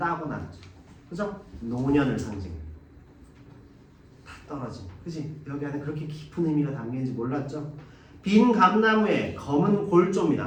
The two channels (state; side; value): identical; both; correlation 1.00